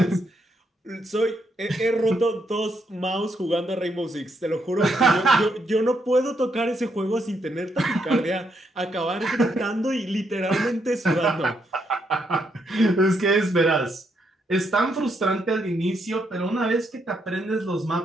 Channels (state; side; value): normal; both; correlation 0.77